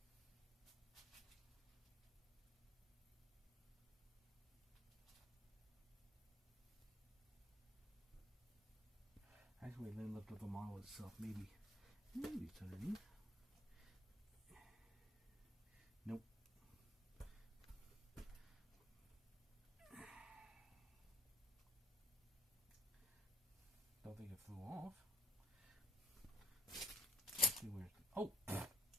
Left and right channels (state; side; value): normal; both; correlation 0.57